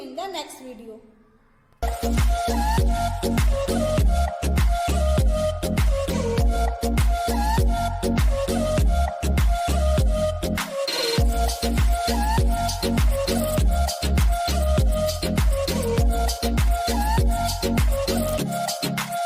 the next video.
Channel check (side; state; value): both; identical; correlation 1.00